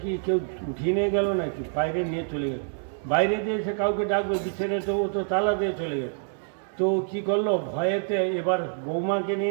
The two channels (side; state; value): left; silent; digital silence